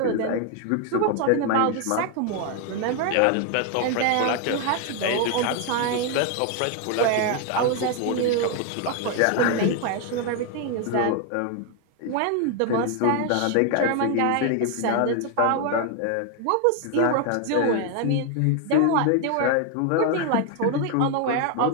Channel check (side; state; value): both; different; correlation 0.01